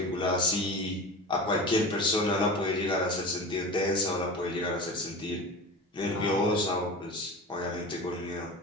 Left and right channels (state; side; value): normal; both; correlation 0.32